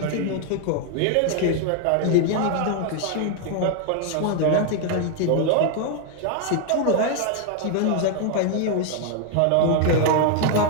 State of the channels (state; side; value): different; both; correlation 0.00